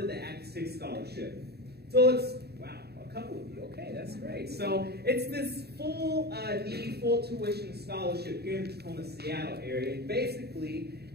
of the Act 6 Scholarship? So it's, wow, a couple of you. Okay, that's great. So it's this full tuition scholarship here in the Tacoma, Seattle area. And basically,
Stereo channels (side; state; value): left; late; 0.47 ms